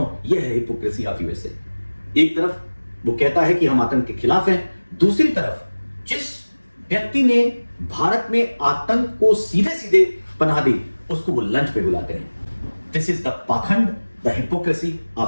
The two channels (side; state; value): both; inverted; correlation -1.00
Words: यह है हिपोक्रेसी ऑफ यूएसए। एक तरफ वो कहता है कि हम आतंक के खिलाफ हैं, दूसरी तरफ जिस व्यक्ति ने भारत में आतंक को सीधे सीधे पनाह दी उसको वो लंच पे बुलाते हैं। दिस इज द पाखंड, द हिपोक्रेसी